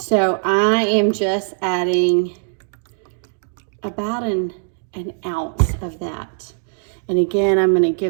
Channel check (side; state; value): left; silent; digital silence